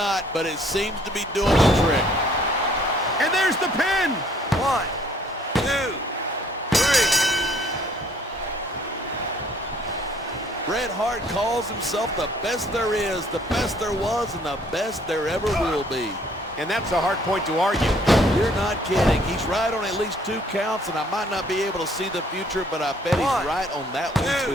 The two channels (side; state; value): both; normal; correlation 0.61